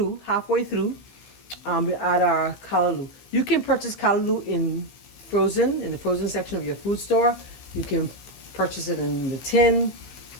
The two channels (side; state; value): right; late; 15 ms